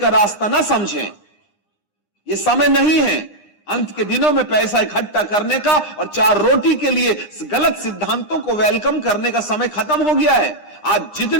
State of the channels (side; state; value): right; late; 9.8 ms